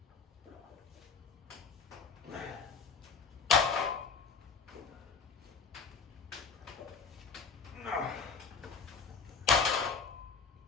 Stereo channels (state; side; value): quieter; right; 5.4 dB